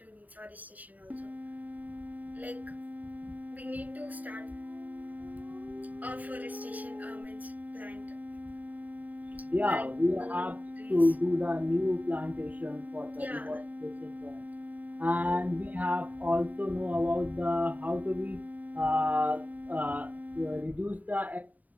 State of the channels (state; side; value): late; left; 0.076 ms